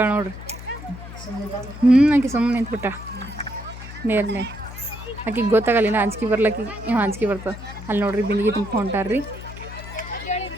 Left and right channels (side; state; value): left; noise; hum, 13 dB below the sound